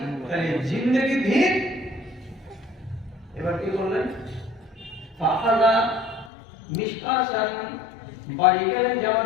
তাহলে জিন্দেগি ভিক। এবার কি বললেন? ফাহাদা মিশকাসান, বাড়ি গেলেন,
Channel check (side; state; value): right; drops out; at 6.3 s